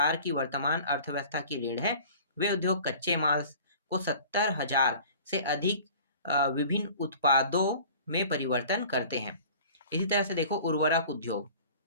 की वर्तमान अर्थव्यवस्था की रीढ़ है। वे उद्योग कच्चे माल को 70,000 से अधिक विभिन्न उत्पादों में परिवर्तन करते हैं। इसी तरह से देखो, उर्वरक उद्योग।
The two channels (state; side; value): inverted; both; correlation -0.45